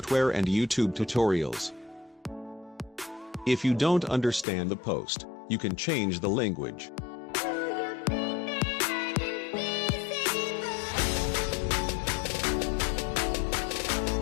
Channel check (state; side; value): drops out; right; at 4.5 s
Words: and YouTube tutorials. If you don't understand the post, you can change the language.